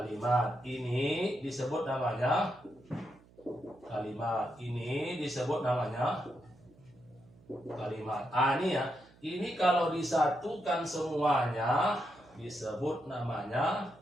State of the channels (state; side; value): noise; right; hum, 27 dB below the sound